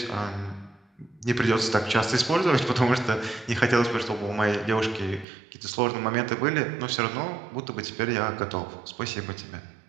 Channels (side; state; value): left; drops out; at 5.2 s